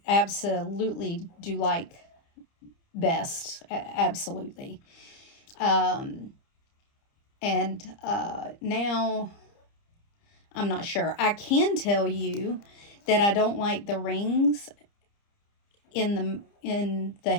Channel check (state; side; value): late; right; 30 ms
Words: absolutely do like best. Absolutely. And now I'm not sure. I can tell you that I don't like the rings in the